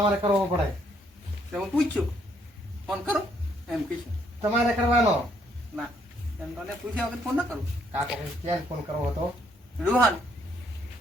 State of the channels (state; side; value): normal; both; correlation 0.69